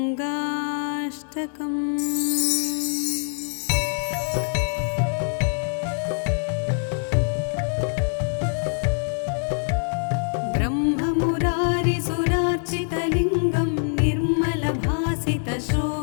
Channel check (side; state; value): right; silent; digital silence